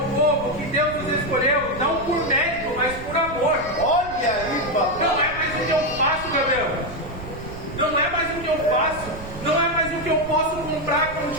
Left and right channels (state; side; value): noise; right; rumble, 13 dB below the sound